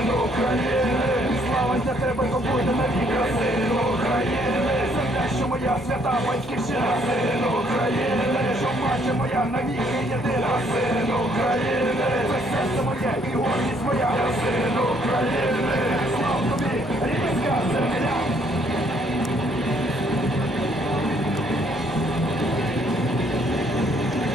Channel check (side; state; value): both; normal; correlation 0.66